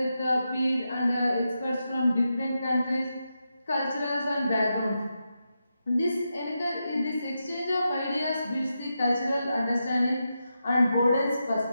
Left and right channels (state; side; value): inverted; both; correlation -0.87